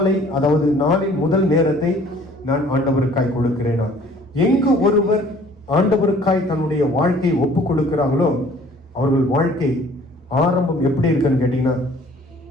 அதாவது நாளின் முதல் நேரத்தை நான் ஆண்டவருக்காய் கொடுக்கிறேனா? எங்கு ஒருவர் ஆண்டவருக்காய் தன்னுடைய வாழ்க்கையை ஒப்பு கொடுக்கிறாங்களோ, அவர்கள் வாழ்க்கை ஆரம்பம் எப்படி இருக்குன்னு கேட்டீங்கன்னா,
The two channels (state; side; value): normal; both; correlation 0.54